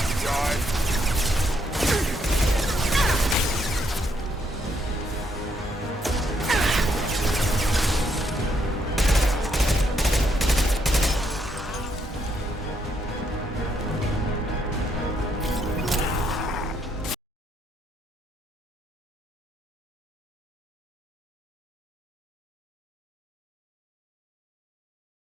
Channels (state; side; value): normal; both; correlation 0.74